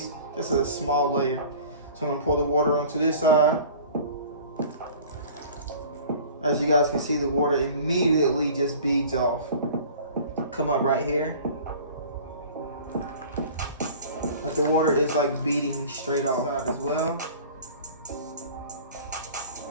just a small layer. So I'm gonna pour the water onto this side. As you guys can see, the water immediately just beads off. Come up right here. Like the water is like beading straight off side as well.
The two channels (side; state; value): both; inverted; correlation -0.44